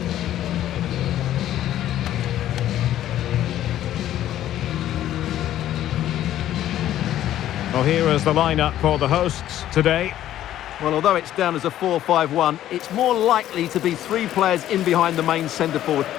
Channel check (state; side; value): quieter; right; 12.5 dB